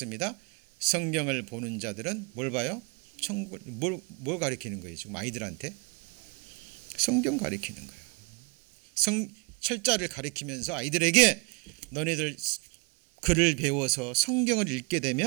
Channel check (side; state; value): left; quieter; 31.1 dB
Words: 성경을 보는 자들은 뭘 봐요? 천국. 뭘 가리키는 거예요? 지금 아이들한테 성경 가리키는 거예요. 철자를 가리키면서 아이들에게 너네들 글을 배워서 성경을 읽게